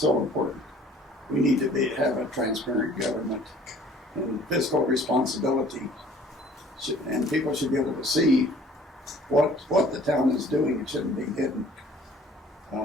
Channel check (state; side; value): normal; both; correlation 0.53